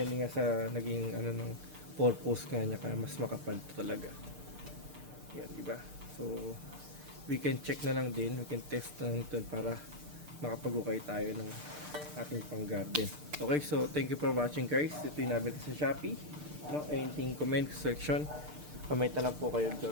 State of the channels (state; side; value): late; left; 6.7 ms